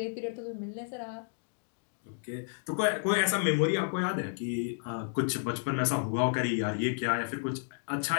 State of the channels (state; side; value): silent; right; digital silence